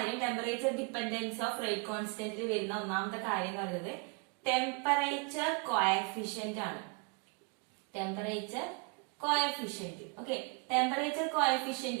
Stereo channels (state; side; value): quieter; left; 32.4 dB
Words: ടെമ്പറേച്ചർ ഡിപ്പെൻഡൻസ് ഓഫ് റേറ്റ് കോൺസ്റ്റന്റിൽ വരുന്ന ഒന്നാമത്തെ കാര്യം എന്ന് പറയുന്നത് ടെമ്പറേച്ചർ കോഎഫിഷ്യന്റ് ആണ്. Temperature coefficient. Okay, temperature